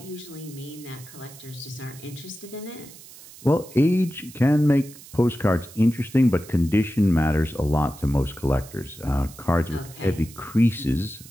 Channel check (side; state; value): right; noise; hiss, 19 dB below the sound